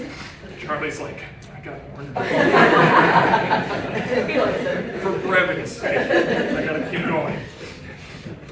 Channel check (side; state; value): both; identical; correlation 1.00